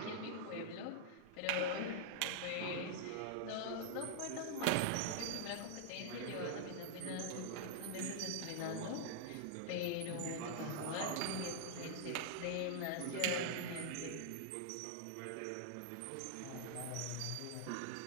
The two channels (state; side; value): different; both; correlation -0.01